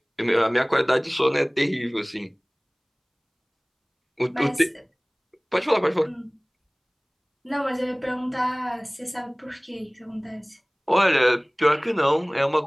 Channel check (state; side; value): identical; both; correlation 1.00